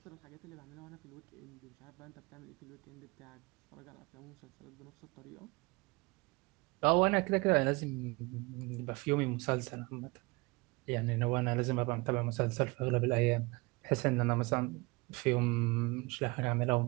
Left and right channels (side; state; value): left; quieter; 25.9 dB